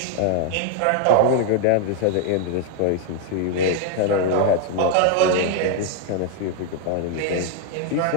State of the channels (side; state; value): both; different; correlation 0.00